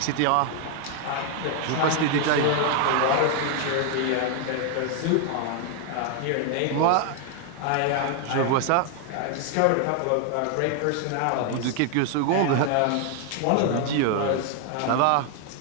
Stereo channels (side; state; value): both; different; correlation 0.00